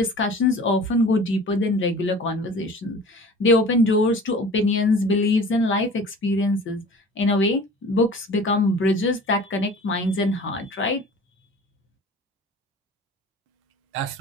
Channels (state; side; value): normal; both; correlation 0.43